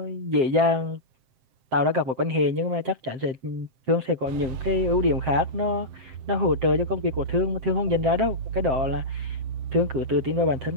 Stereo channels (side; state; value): left; late; 7.6 ms